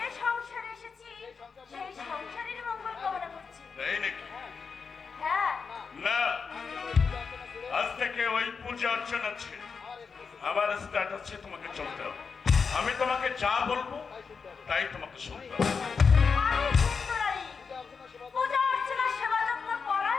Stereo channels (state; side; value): quieter; right; 5.4 dB